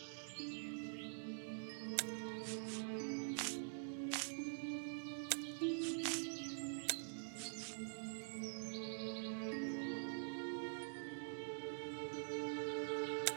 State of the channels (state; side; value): silent; left; digital silence